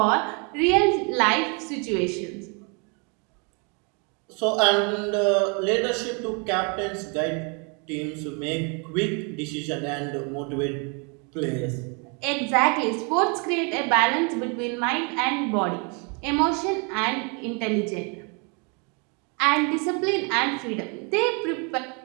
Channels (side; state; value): left; quieter; 34.6 dB